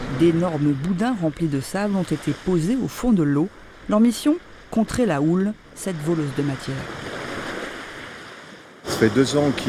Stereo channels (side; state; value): both; identical; correlation 1.00